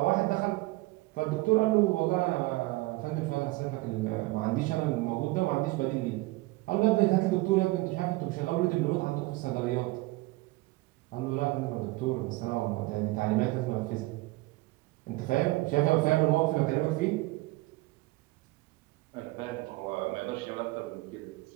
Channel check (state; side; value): quieter; left; 21.2 dB